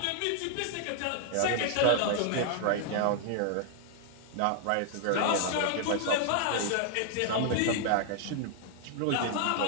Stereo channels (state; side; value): different; both; correlation 0.00